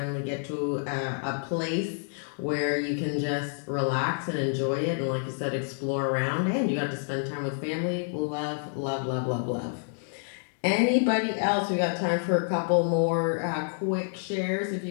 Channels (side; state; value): right; silent; 59 dB below the other